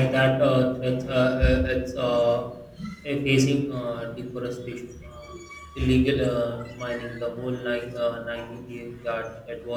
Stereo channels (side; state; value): both; identical; correlation 1.00